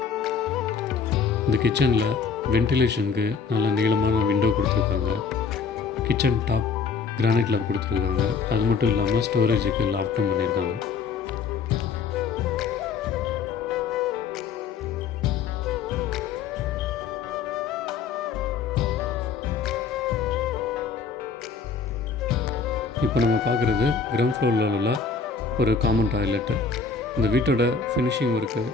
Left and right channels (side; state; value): right; quieter; 5.4 dB